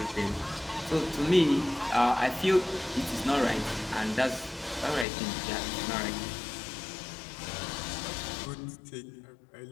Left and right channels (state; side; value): drops out; right; at 5.1 s